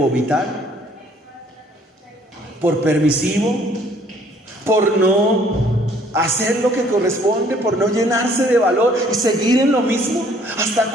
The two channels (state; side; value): normal; both; correlation 0.60